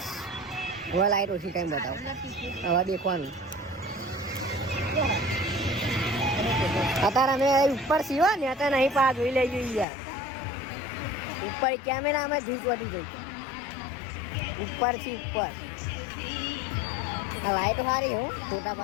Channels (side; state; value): right; drops out; at 9.9 s